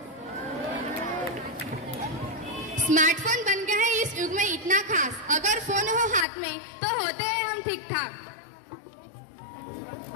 स्मार्टफोन बन गया है इस युग में इतना खास, अगर फोन हो हाथ में तो होते हैं हम ठीक ठाक।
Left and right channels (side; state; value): right; drops out; at 6.2 s